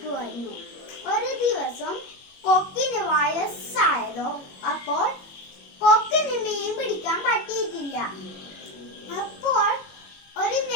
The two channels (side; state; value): right; late; 21 ms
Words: ഒരു ദിവസം കൊക്കിന് വയസ്സായതോ. അപ്പോൾ കൊക്കിന് മീൻ പിടിക്കാൻ പറ്റിയിട്ടില്ല. അപ്പോൾ ഒരു